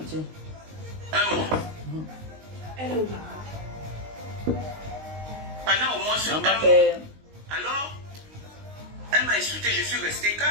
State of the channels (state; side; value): late; left; 19 ms